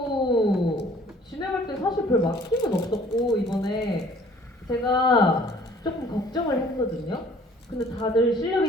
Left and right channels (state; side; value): normal; both; correlation 0.54